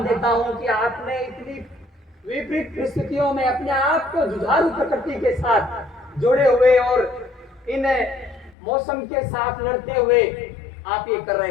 देता हूं कि आपने इतनी विपरीत परिस्थितियों में अपने आप को जुझारू प्रकृति के साथ जोड़े हुए और इन मौसम के साथ लड़ते हुए आप ये कर रहे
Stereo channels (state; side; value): drops out; right; at 8.6 s